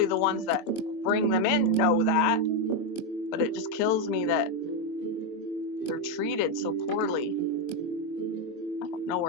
the ones that bring them in know that, but it just kills me that they're treated so poorly. I don't know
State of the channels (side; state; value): right; late; 23 ms